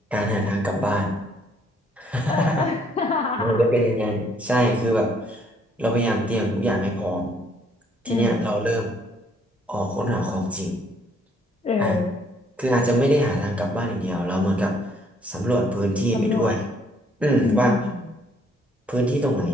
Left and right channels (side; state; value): both; normal; correlation 0.66